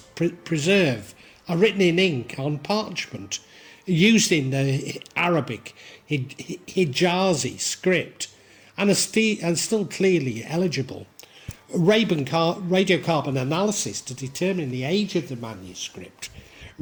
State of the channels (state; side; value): identical; both; correlation 1.00